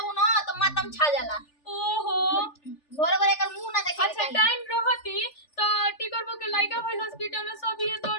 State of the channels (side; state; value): right; late; 3.4 ms